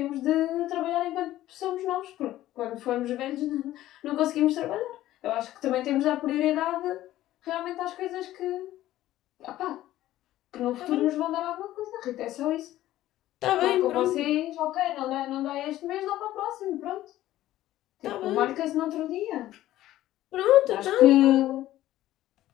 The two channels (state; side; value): quieter; right; 14.5 dB